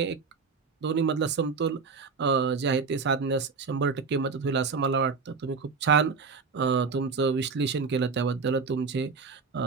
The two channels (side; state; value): left; quieter; 5.0 dB